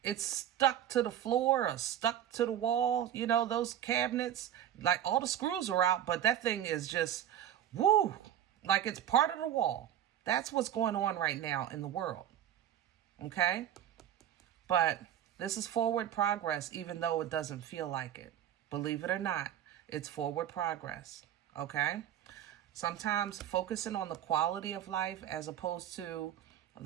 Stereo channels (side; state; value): left; quieter; 10.7 dB